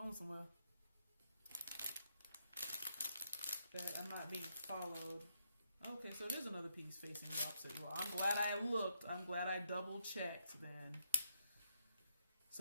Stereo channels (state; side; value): inverted; both; correlation -0.78